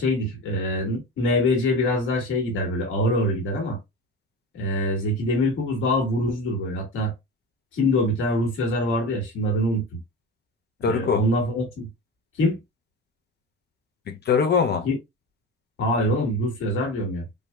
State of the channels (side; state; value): both; normal; correlation 0.28